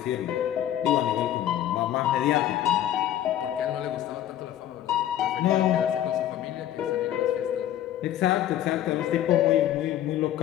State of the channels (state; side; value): quieter; right; 12.0 dB